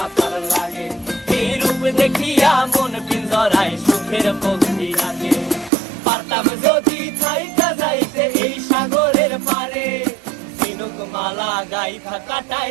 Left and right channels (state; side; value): drops out; left; at 5.7 s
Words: লাগে, এই রূপ দেখিয়া মন পিঞ্জরায় সুখের পক্ষী রাখে। পারতাম যদি থাইকা যাইতে এই সাগরের পারে, ঝিনুক মালা গাইথা কাটাই